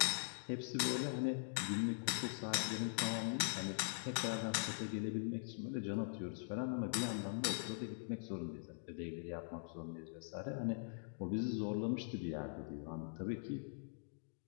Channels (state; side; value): silent; right; digital silence